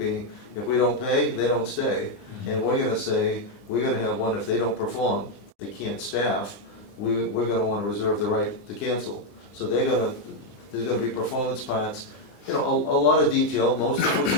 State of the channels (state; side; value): late; right; 20 ms